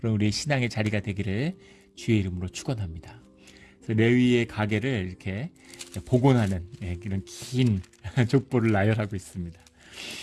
우리의 신앙의 자리가 되기를 주의 이름으로 축원합니다. 그래서 레위의 가게를 이렇게 복원하는 이런 긴 족보를 나열하고 있습니다.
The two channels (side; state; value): both; identical; correlation 1.00